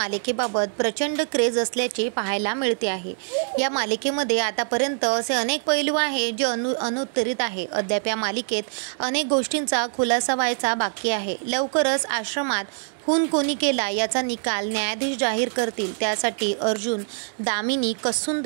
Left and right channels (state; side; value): silent; left; 62 dB below the other